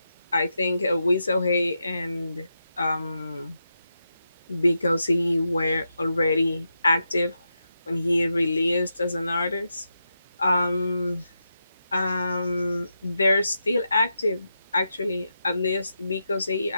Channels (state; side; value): inverted; both; correlation -0.87